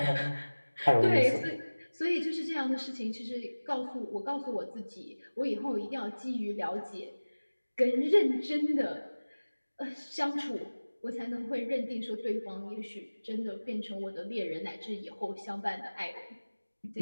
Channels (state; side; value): inverted; both; correlation -1.00